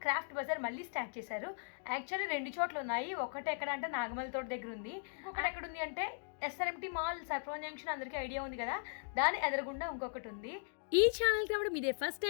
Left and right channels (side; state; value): right; silent; digital silence